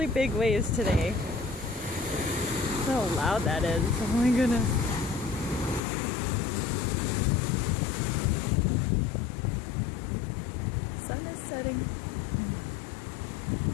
big waves today. How loud that is. Oh my goodness. Sun is setting.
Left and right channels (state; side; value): drops out; right; at 5.8 s